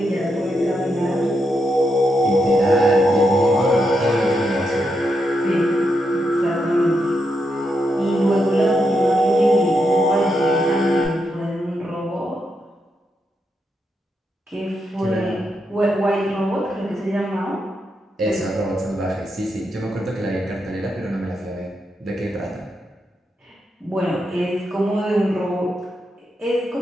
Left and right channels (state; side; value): normal; both; correlation 0.83